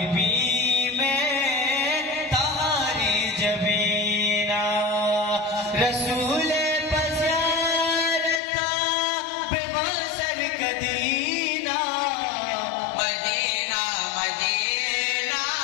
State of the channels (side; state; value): right; drops out; at 8.4 s